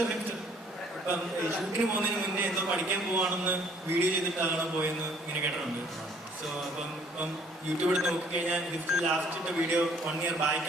ഇപ്പം ഷൂട്ടിന് പോകുന്നതിന് മുന്നേ എന്തോ പഠിക്കാൻ പോവാണെന്ന് വീഡിയോ ചെയ്തിട്ടാണ് പോയെന്ന് ഇങ്ങനെ കേട്ടിട്ടുണ്ട്. സോ ഇപ്പം യൂട്യൂബ് എടുത്ത് നോക്കിക്കഴിഞ്ഞാൽ ലാസ്റ്റ് ഇട്ട വീഡിയോ 1 year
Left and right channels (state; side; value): normal; both; correlation 0.59